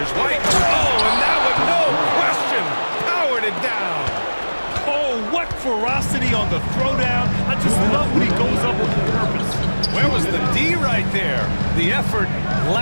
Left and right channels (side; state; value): both; inverted; correlation -1.00